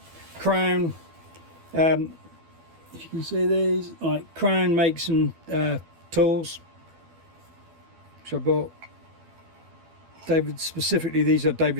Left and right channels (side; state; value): left; late; 12 ms